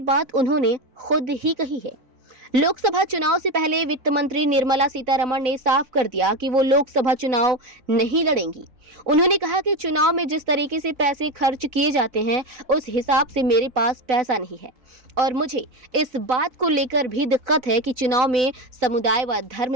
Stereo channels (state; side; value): late; left; 3.9 ms